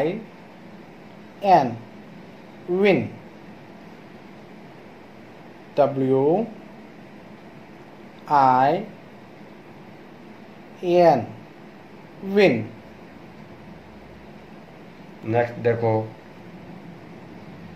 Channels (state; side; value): identical; both; correlation 1.00